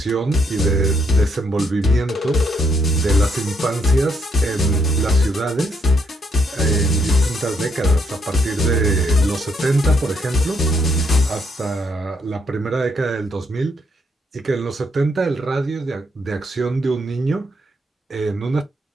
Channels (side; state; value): both; normal; correlation 0.73